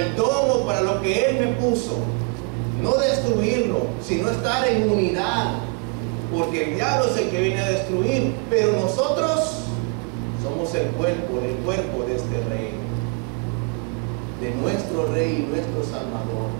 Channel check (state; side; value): quieter; left; 31.3 dB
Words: don o para lo que Él me puso. No destruirlo, sino estar en unidad, porque el diablo es el que viene a destruir, pero nosotros somos el cuerpo de este Rey, de nuestro Rey y nuestro Salvador.